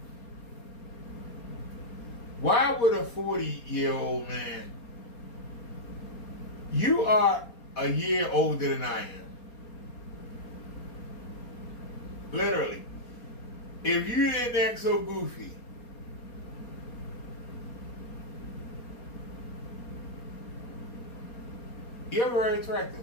Why would a 40-year-old man? You are a year older than I am. Literally. If you didn't act so goofy, you're very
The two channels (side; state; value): right; late; 4.3 ms